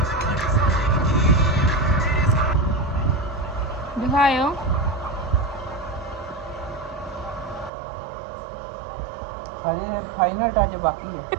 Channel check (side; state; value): left; drops out; at 7.7 s